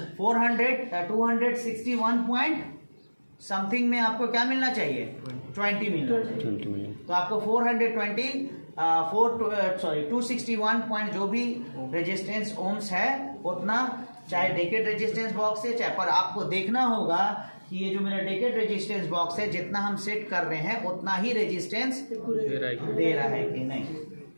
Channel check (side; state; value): both; inverted; correlation -1.00